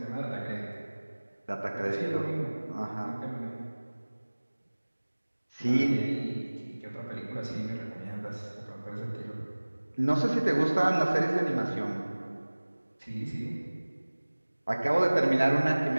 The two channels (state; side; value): inverted; both; correlation -1.00